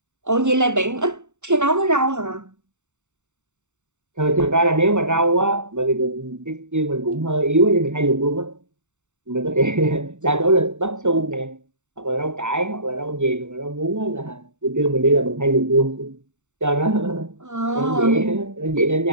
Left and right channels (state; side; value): late; left; 0.84 ms